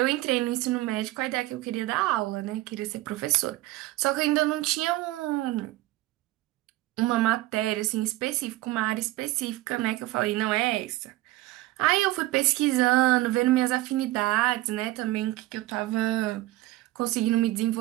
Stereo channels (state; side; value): quieter; left; 17.6 dB